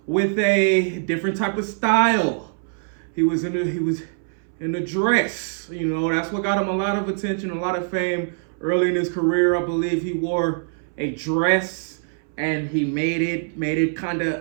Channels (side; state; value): left; silent; 63 dB below the other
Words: with a different type of style. He was in a dress. You know, that's what got him a lot of attention, a lot of fame. Early in his career, I believe he wore a dress and he made it kind